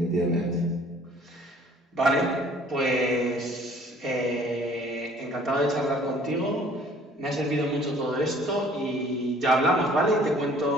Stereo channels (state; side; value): normal; both; correlation 0.55